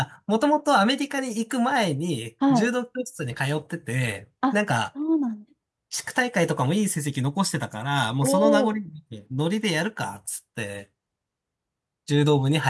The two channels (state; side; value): identical; both; correlation 1.00